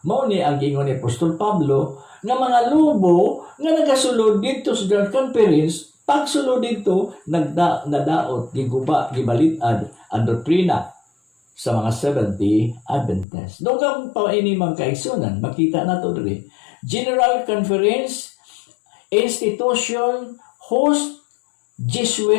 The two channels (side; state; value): right; drops out; at 13.2 s